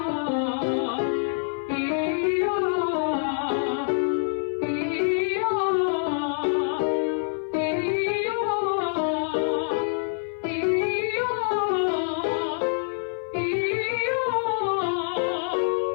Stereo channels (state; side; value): silent; right; 56 dB below the other